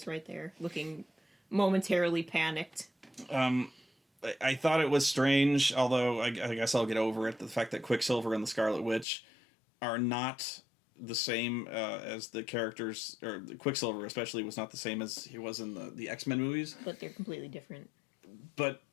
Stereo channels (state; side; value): drops out; right; at 9.1 s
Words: right there, looking momentarily panicked. I thought it was strange, although I guess I'll get over it, the fact that Quicksilver and the Scarlet Witch are not the same as the characters, or Quicksilver especially was not the same as he was in the X-Men movies. But they're completely different. But